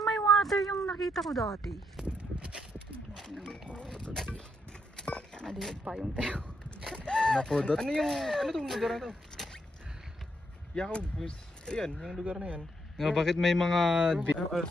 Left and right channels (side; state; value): both; normal; correlation 0.77